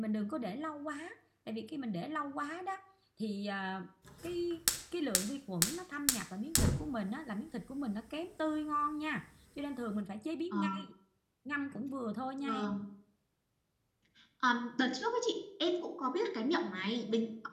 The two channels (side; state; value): both; identical; correlation 1.00